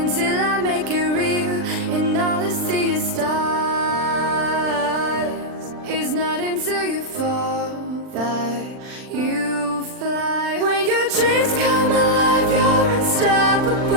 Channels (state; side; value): late; left; 39 ms